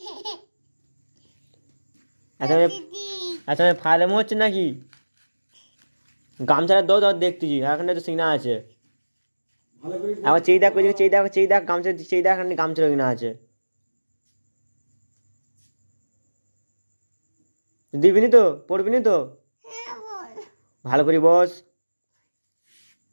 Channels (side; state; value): both; inverted; correlation -1.00